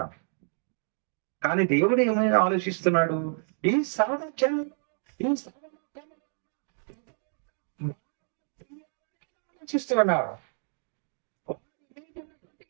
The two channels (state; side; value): silent; left; digital silence